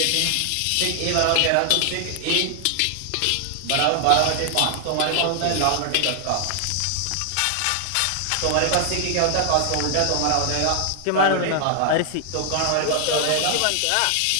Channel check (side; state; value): both; different; correlation 0.00